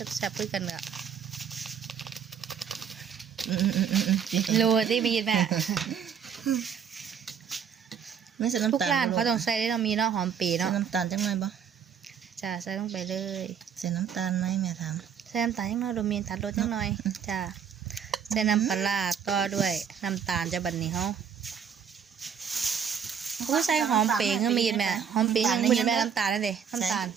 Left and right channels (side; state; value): left; quieter; 7.7 dB